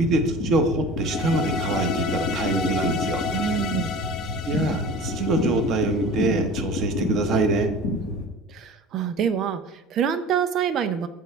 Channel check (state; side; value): normal; both; correlation 0.39